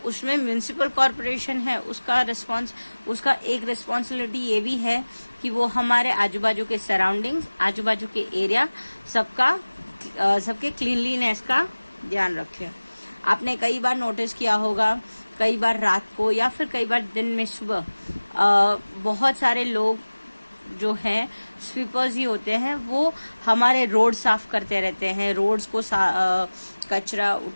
उसमें म्यूनिसिपल कॉर्पोरेशन है, उसका एक रिस्पॉन्सिबिलिटी ये भी है कि वो हमारे आजू बाजू के सराउंडिंग्स, आजू बाजू के एरिया सबके क्लीनलीनेस का ध्यान रखे. आपने कई बार नोटिस किया होगा, कई बार रात को या फिर कई बार दिन में सुबह बहुत सारे लोग जो हैं स्वीपर्स ही होते हैं, वो हमारे रोड साफ करते रहते हैं, रोड्स को कचरा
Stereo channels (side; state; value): both; inverted; correlation -1.00